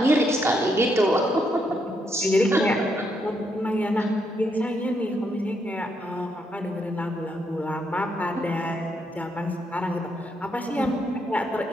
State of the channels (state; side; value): normal; both; correlation 0.77